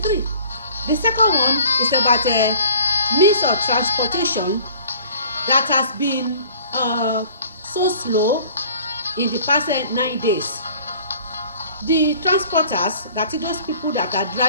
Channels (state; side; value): inverted; both; correlation -0.49